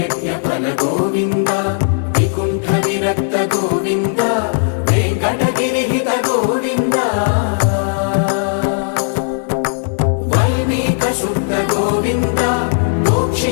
ఫల గోవింద వికుంఠ విరక్త గోవింద వెంకటగిరి హిత గోవింద వల్మీక శుద్ధ గోవింద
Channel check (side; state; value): right; silent; digital silence